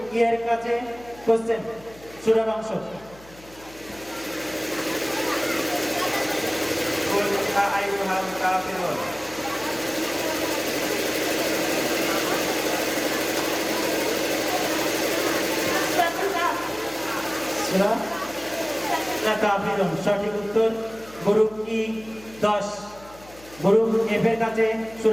ই এর কাছে কোশ্চেন, সূরার অংশ। কুল ইয়া আইয়ুহাল কাফিরুন। সূরাতুল কাহফ। সূরা কাফিরুন সঠিক উত্তর। গ্রুপ ই 10, গ্রুপ এফ এর কাছে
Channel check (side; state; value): left; noise; hum, 23 dB below the sound